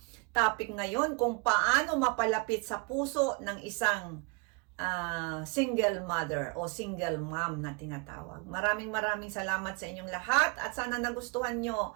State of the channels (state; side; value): quieter; left; 30.6 dB